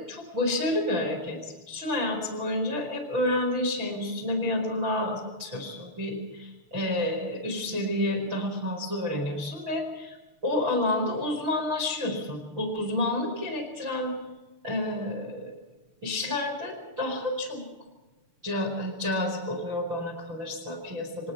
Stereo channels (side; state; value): left; late; 6.7 ms